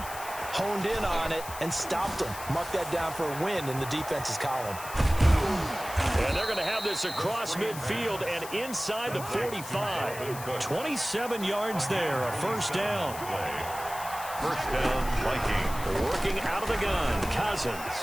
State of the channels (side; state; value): left; noise; hiss, 12 dB below the sound